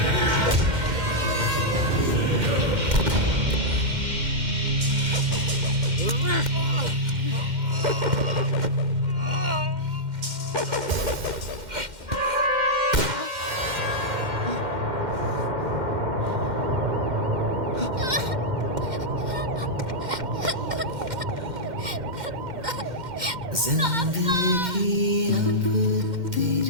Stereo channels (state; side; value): late; left; 2.1 ms